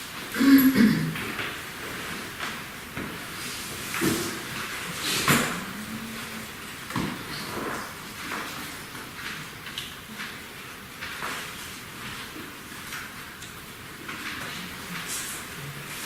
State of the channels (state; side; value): identical; both; correlation 1.00